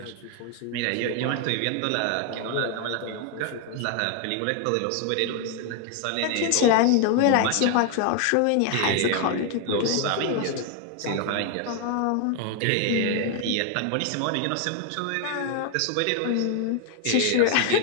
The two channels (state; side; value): different; both; correlation 0.01